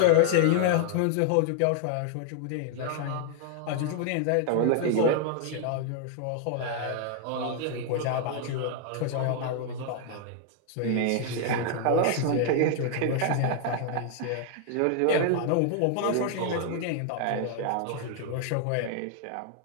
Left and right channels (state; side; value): different; both; correlation 0.00